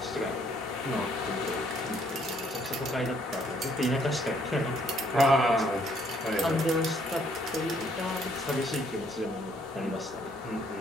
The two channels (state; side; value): normal; both; correlation 0.67